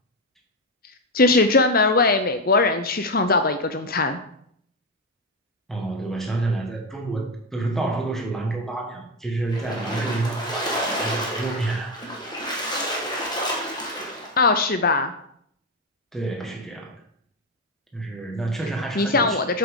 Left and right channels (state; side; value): normal; both; correlation 0.09